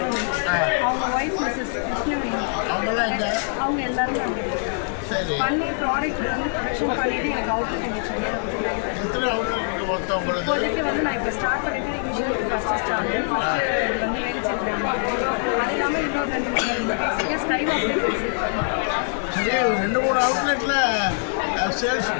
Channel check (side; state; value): right; silent; 55 dB below the other